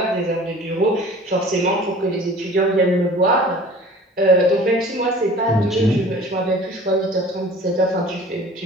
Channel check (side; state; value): both; normal; correlation 0.45